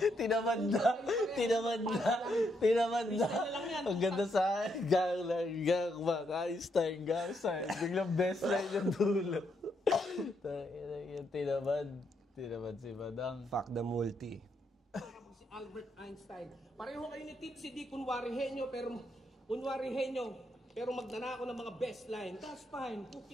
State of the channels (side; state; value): both; normal; correlation 0.77